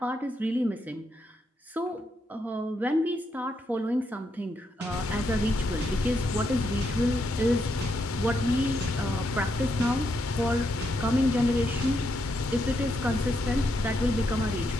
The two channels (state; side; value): normal; both; correlation 0.80